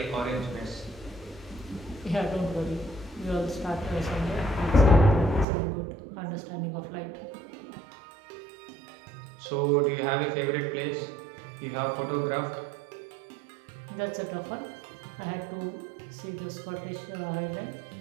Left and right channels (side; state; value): left; drops out; at 5.5 s